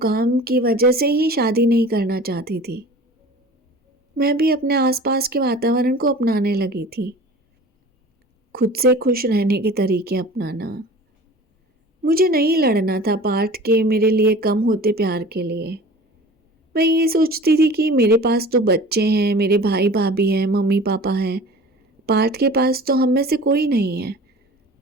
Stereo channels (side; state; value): both; normal; correlation 0.41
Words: की वजह से ही शादी नहीं करना चाहती थी। मैं भी अपने आसपास के वातावरण को अपनाने लगी थी, खुद से खुश रहने के तरीके अपनाना। मुझे नहीं लड़ना था पार्थ के मेरे लिए कम होते प्यार के लिए। मैं ये सोचती थी कि मेरे पास तो बच्चे हैं, मेरे भाई भाभी हैं, मम्मी पापा हैं। पार्थ के पास तो हम में से कोई नहीं है।